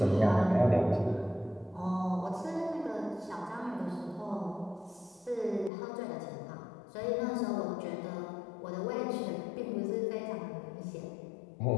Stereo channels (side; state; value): right; drops out; at 5.7 s